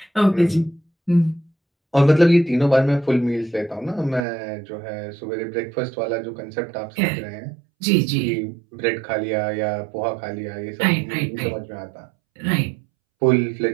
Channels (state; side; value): drops out; left; at 4.2 s